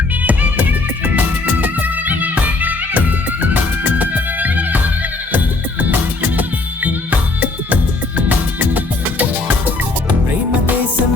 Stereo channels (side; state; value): right; quieter; 3.3 dB